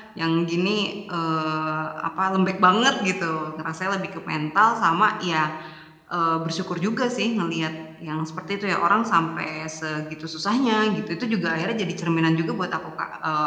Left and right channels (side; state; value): both; identical; correlation 1.00